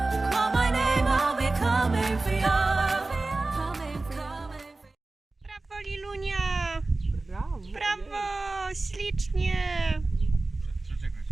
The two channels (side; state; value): left; quieter; 3.2 dB